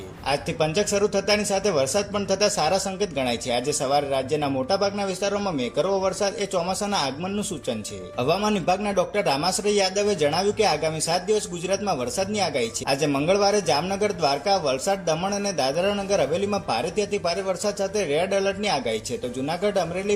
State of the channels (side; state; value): both; identical; correlation 1.00